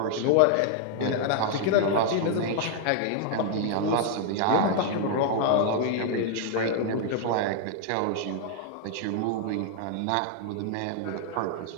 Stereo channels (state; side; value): different; both; correlation 0.00